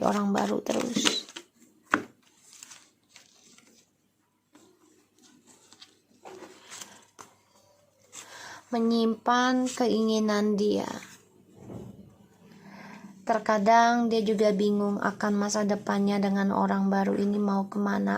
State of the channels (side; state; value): both; identical; correlation 1.00